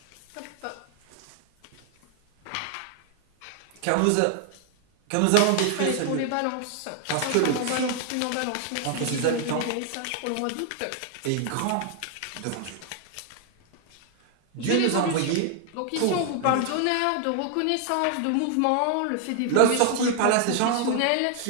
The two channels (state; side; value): different; both; correlation 0.00